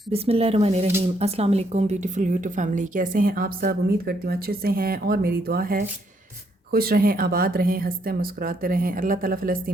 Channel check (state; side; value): normal; both; correlation 0.73